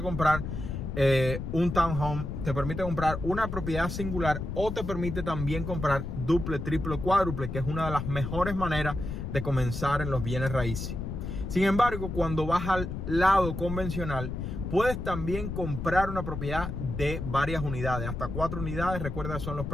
comprar un townhome, te permite comprar una propiedad singular, o te permite también comprar duple, triple, cuádruple, que es una de las mejores maneras de comenzar en los bienes raíces. Sin embargo, cuando vas al lado convencional, puedes también comprar una propiedad de varias unidades, hasta 4 unidades. Recuerda, son los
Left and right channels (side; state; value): left; noise; rumble, 5 dB below the sound